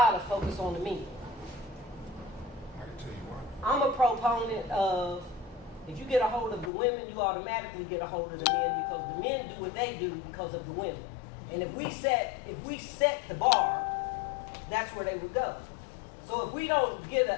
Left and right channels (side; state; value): right; drops out; at 6.7 s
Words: of focus on the men. I can tell you why. I'm a proponent of, if you get a hold of the women, you automatically get a hold of the men, because the men do what they do because of the women. And if we set the bar, that's where they would go. So if we don't